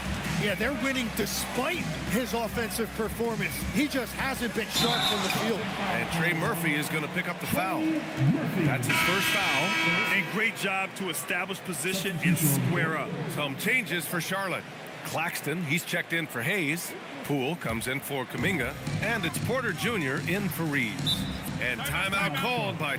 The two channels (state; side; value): identical; both; correlation 1.00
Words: Yeah, they're winning despite his offensive performance. He just hasn't been sharp from the field. And Trey Murphy is going to pick up the foul. That's his first foul. And great job to establish position and square up. Some changes for Charlotte. Claxton, he's checked in for Hayes. Poole comes in for Kuminga. And it's Porter Jr. in for Reeves. And timeout called by